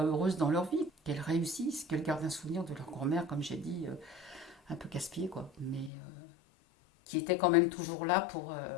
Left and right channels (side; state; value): right; drops out; at 5.9 s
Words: heureuses dans leur vie, qu'elles réussissent, qu'elles gardent un souvenir de leur grand-mère, comme j'ai dit, un peu casse-pied, quoi. Mais qui était quand même toujours là